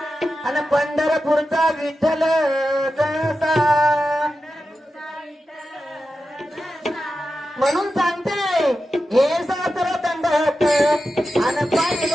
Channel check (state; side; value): normal; both; correlation 0.91